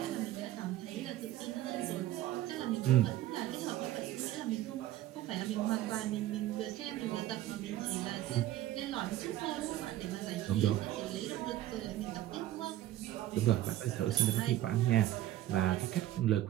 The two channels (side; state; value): left; quieter; 14.1 dB